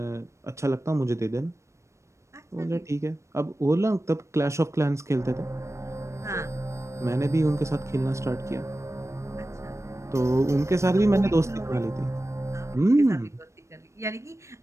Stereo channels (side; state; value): left; late; 0.14 ms